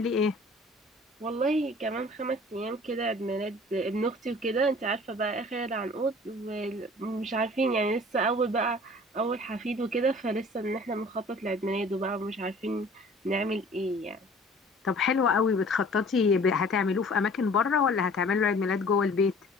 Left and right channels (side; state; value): both; normal; correlation 0.49